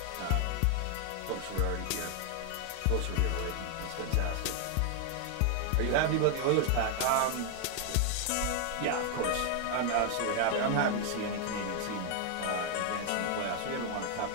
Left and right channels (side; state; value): both; different; correlation 0.00